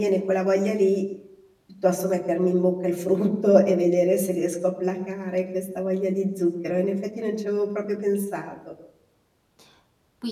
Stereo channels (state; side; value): identical; both; correlation 1.00